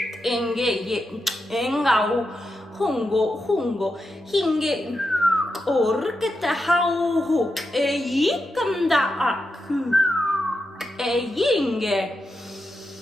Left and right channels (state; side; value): normal; both; correlation 0.87